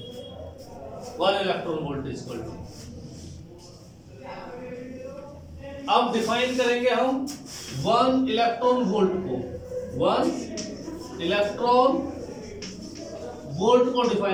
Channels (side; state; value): both; identical; correlation 1.00